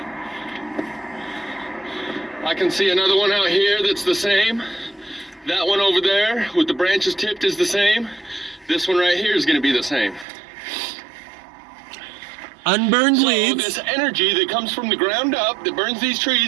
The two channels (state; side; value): drops out; left; at 10.2 s